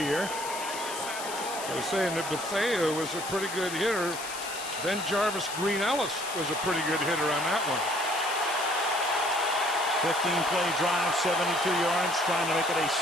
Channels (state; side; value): noise; left; hiss, 9 dB below the sound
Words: I was saying that Bethea was a pretty good hitter. Then Jarvis Green Ellis was a pretty good hitter on that one. 15-play drive, 72 yards, trying to make it a